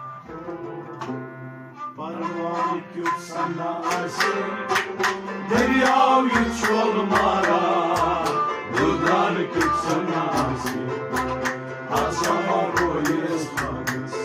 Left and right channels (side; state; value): both; identical; correlation 1.00